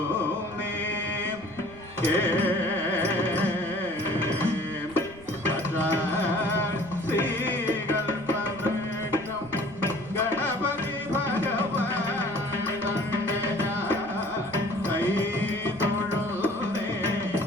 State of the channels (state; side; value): noise; right; rumble, 20 dB below the sound